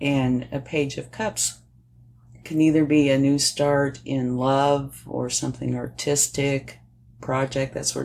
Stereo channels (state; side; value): identical; both; correlation 1.00